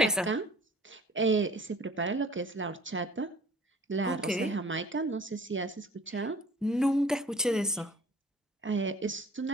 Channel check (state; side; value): normal; both; correlation 0.49